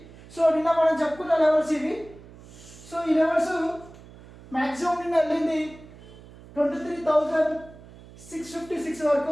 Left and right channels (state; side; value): noise; right; hum, 20 dB below the sound